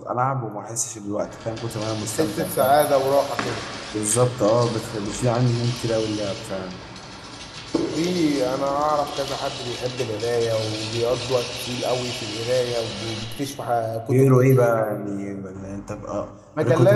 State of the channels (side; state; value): both; identical; correlation 1.00